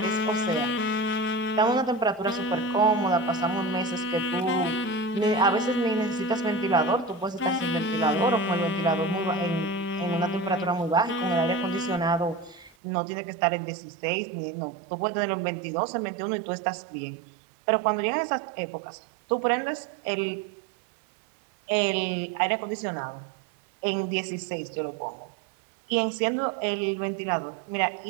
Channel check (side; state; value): left; drops out; at 12.8 s